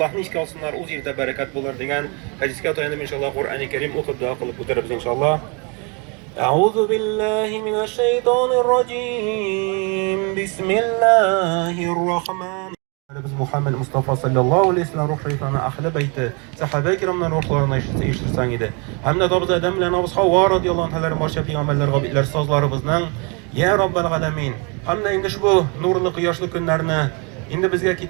ishga olsinlar, o'z yerda barakat bo'lar degan hadisga tayanib inshaalloh Qur'oni Karim o'qib duo qilib o'tiramiz inshaalloh. A'udhu billahi minash shaytonir rojim. Bismillahir rohmanir Biz Muhammed Mustafa sallallahu aleyhi ve sellem ruh şeytanı ahli beyti sahabe-i kiramdan ruhlarına iştirsan idi. Hem de dabız Adem ile Nabız Havva radiyallahu anh'ların barşa peygamberler, gabitler, sazlarımızdan Ya Rabbel Alemin. Hem de indi şu nurlu kıyaşlı günlerini indi bizge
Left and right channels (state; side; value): quieter; left; 32.8 dB